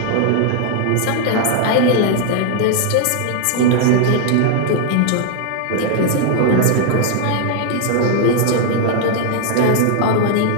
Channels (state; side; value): different; both; correlation 0.00